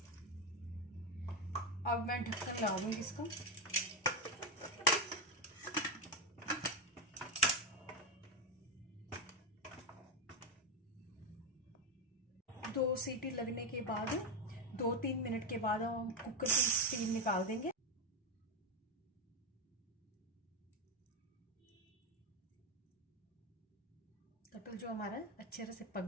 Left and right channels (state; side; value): normal; both; correlation 0.08